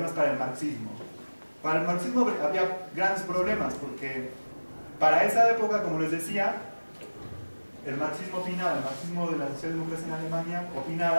para el marxismo. Para el marxismo había grandes problemas porque para esa época, como les decía, el marxismo de la socialdemocracia en Alemania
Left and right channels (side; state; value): both; inverted; correlation -1.00